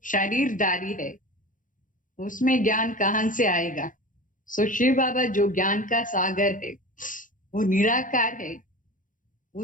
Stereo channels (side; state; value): right; late; 0.38 ms